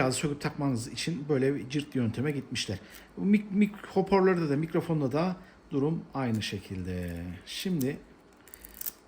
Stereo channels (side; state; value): both; identical; correlation 1.00